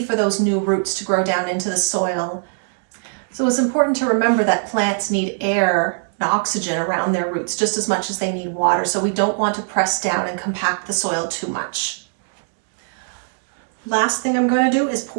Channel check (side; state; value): left; silent; digital silence